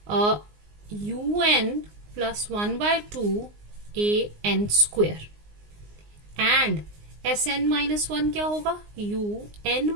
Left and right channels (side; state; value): left; late; 19 ms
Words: un plus 1/2 an square and Sn-1 क्या होगा?